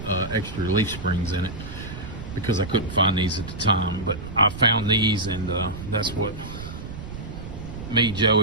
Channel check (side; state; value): right; noise; rumble, 10 dB below the sound